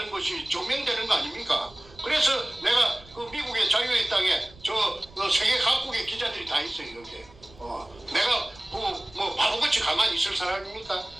것이 증명되는 거 아닙니까? 그래서 내가 미국의 자유의 땅에 세계 각국의 기자들이 다 있어요, 여기에. 내가 바보같이 가만히 있을 사람입니까?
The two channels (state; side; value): noise; right; rumble, 23 dB below the sound